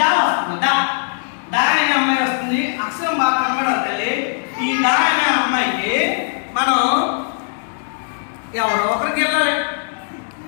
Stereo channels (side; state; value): right; silent; digital silence